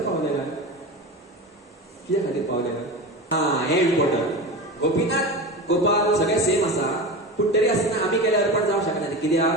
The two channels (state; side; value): normal; both; correlation 0.26